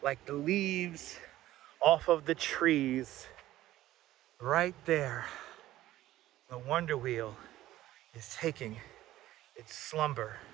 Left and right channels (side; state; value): left; quieter; 14.8 dB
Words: like the leaves off of the trees. Right there, the Wonder Wheel is taking its slumber